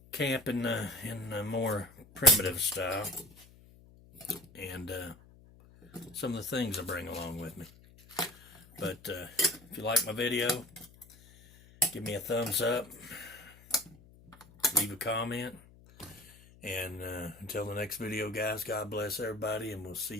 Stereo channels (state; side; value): noise; left; hum, 24 dB below the sound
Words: camping in a more primitive style, and some of the things I bring along with me. But if you like my video, give me a thumbs up, leave a comment, and until the next video, guys, God bless everybody, and we'll see